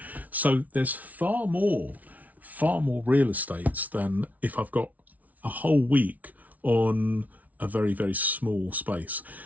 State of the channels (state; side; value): late; left; 0.073 ms